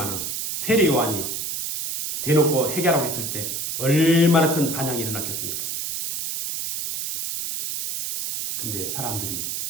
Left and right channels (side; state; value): right; noise; hiss, 3 dB below the sound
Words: 세례 요한이 대놓고 회개하라고 했을 때 얼마나 큰 반향이 일어났겠습니까? 근데 사람들이